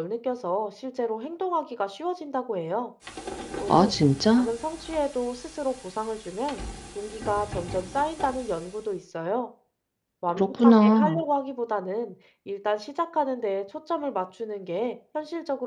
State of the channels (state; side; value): identical; both; correlation 1.00